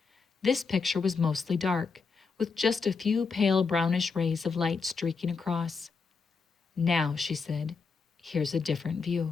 This picture was mostly dark, with just a few pale brownish rays of light streaking across. "Now," she said, "here's a different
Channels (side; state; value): right; quieter; 4.9 dB